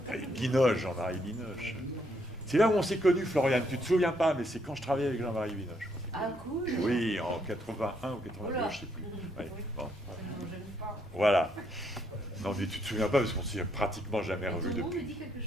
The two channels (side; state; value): both; normal; correlation 0.73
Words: Binoche, Jean-Marie Binoche. C'est là où on s'est connus, Florian. Tu ne te souviens pas, mais c'est quand je travaillais avec Jean-Marie Binoche. Ah, cool. Oui, en 81 ou 82, je ne sais plus. Ouais, bon. Voilà. Non, mais tu ne te souviens pas parce qu'on ne s'est pratiquement jamais revu depuis. Tout le monde me dit quelque